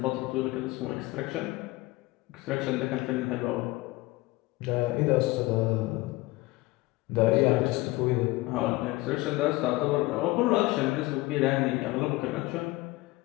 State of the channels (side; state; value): right; quieter; 20.6 dB